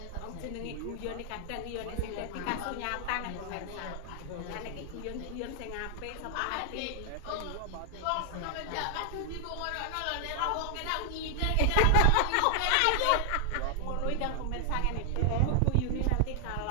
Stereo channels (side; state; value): both; different; correlation 0.00